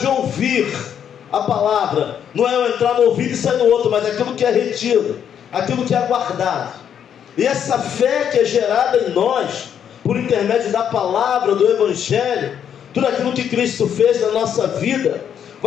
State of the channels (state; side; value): quieter; right; 8.7 dB